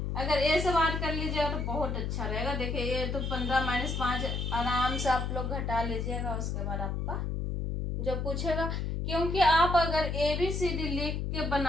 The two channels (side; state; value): left; noise; hum, 2 dB below the sound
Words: अगर ए से बात कर लीजिएगा तो बहुत अच्छा रहेगा। देखिए ये तो 15 - 5 आराम से आप लोग घटा लीजिएगा, उसके बाद आपका जो पूछेगा, क्योंकि आप अगर ABCD लिख के